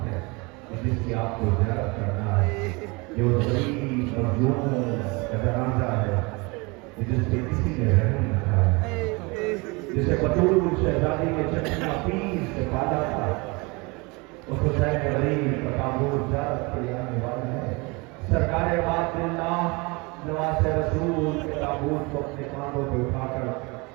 ہے جس کی آپ کو زیارت کرنا ہے، جو غریب مظلوم کا جنازہ ہے جس پہ کسی نے رحم نہ کھایا، جسے بطول شہزادی کے چچا پیس سے پالا تھا، اس حسین غریب کا تابوت زیارت کے لیے آنے والا ہے۔ سرکار بات اللہ نواز رسول کے تابوت کو اپنے کاندھوں پہ اٹھا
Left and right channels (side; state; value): left; quieter; 27.1 dB